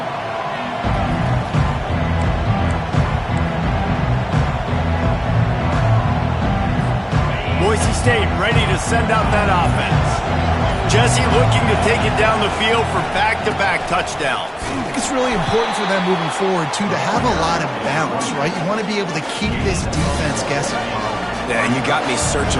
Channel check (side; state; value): both; identical; correlation 1.00